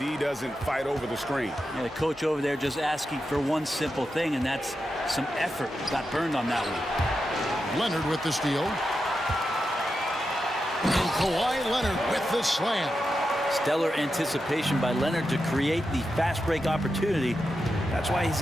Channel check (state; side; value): normal; both; correlation 0.88